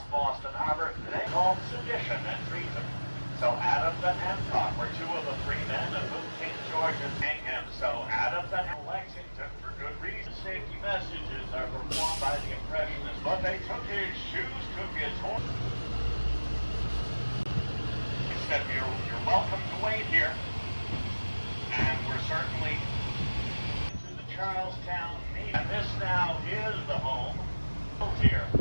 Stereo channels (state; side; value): inverted; both; correlation -1.00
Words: Boston Harbor, they called sedition and treason. So Adams and Hancock were two of the three men of whom King George is hanging him. So Adams and Lexington, for good reason. Safety messages are performed by the Impressionists, but they took his shoes, took his horse. He said, you're welcome to wait here. And we're certainly to the Charlestown Navy. And this now is the home built here